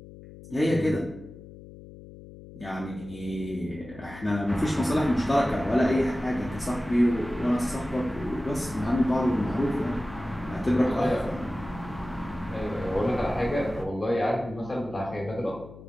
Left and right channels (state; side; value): noise; left; hum, 17 dB below the sound